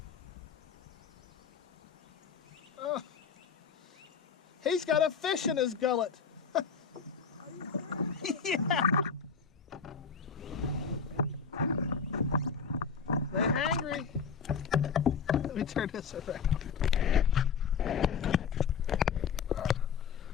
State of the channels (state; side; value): quieter; right; 6.2 dB